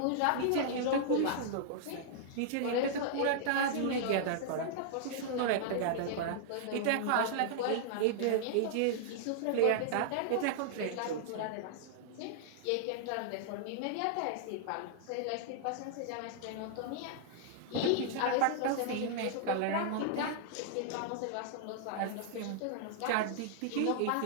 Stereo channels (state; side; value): different; both; correlation -0.01